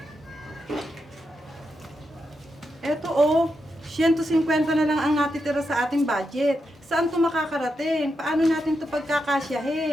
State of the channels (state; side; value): normal; both; correlation 0.85